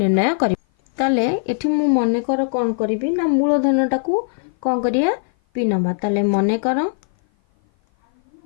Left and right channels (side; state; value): right; silent; 56 dB below the other